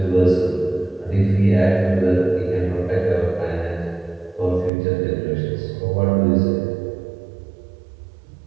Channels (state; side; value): drops out; left; at 4.7 s